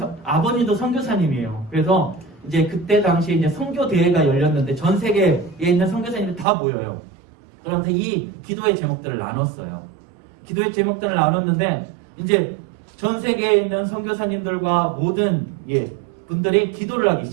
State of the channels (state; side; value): drops out; left; at 6.5 s